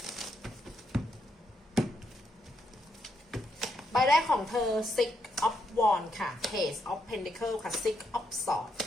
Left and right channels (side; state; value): both; normal; correlation 0.78